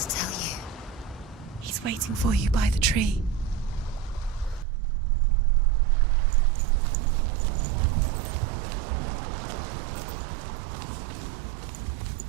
tell you? He's waiting for you by the tree.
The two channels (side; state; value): left; drops out; at 4.7 s